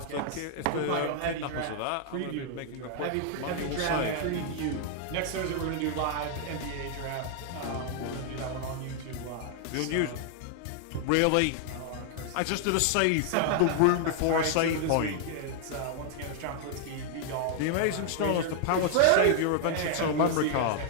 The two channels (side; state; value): both; different; correlation 0.00